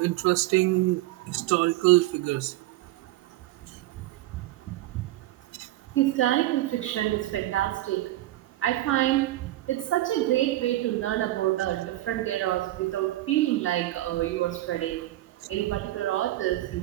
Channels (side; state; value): left; quieter; 16.0 dB